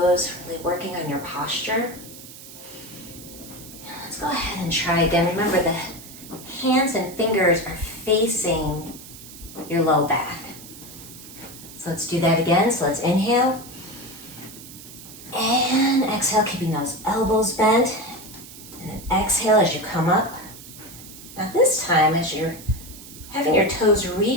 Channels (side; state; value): right; noise; hiss, 16 dB below the sound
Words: really working on your posture. Let's go ahead and try again. Remember, the hands and fingers are facing your low back. So let's do that again. So let's inhale and exhale, keeping those elbows bent. And then exhale as you come up. Now this time, as you're having your toes